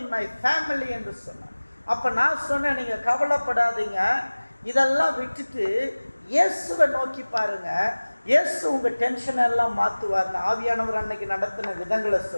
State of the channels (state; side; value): inverted; both; correlation -1.00